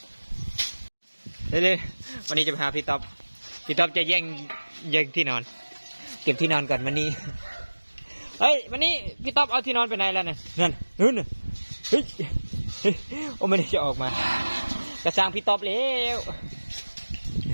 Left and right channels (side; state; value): both; inverted; correlation -1.00